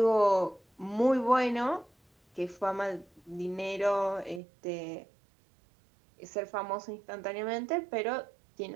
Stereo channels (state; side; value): drops out; left; at 4.4 s